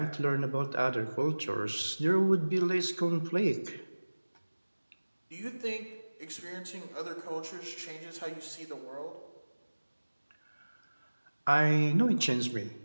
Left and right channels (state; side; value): inverted; both; correlation -1.00